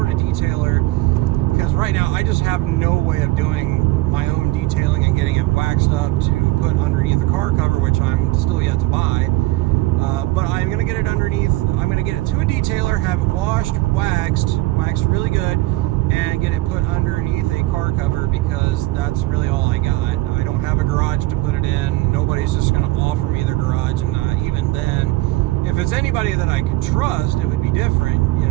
of detailer, because right now I just have no way of doing my own detailing and getting it waxed up to put underneath the car cover, which I'm still yet to buy. But I'm going to get it underneath, I'm going to get it to a detailer, have it washed, waxed really good, and get it put underneath a car cover, because that's really all I got. I don't have a garage to put it in. Nobody's just going to offer me their garage, and even then, if it's anybody that I could trust, it would be different, you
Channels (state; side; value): quieter; left; 18.9 dB